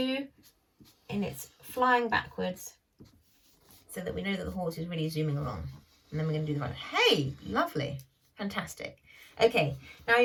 and it's flying backwards so that we know that the horse is really zooming along. And then we're going to do the ride. Hey, lovely. Fantastic. Okay, now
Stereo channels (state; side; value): identical; both; correlation 1.00